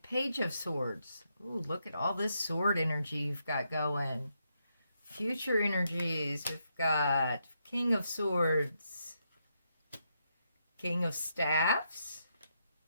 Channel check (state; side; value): inverted; both; correlation -0.80